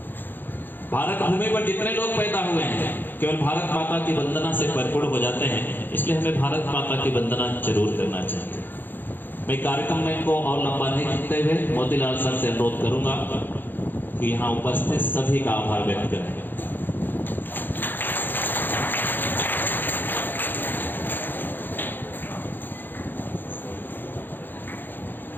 भारत भूमि पर जितने लोग पैदा हुए हैं केवल भारत माता की वंदना से परिपूर्ण हो जाते हैं, इसलिए हमें भारत माता की वंदना जरूर करना चाहिए। मैं कार्यक्रम में को और लंबा नहीं करते हुए मोतीलाल सर से अनुरोध करूंगा कि यहाँ उपस्थित सभी का आभार व्यक्त करें।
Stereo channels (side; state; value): right; late; 0.092 ms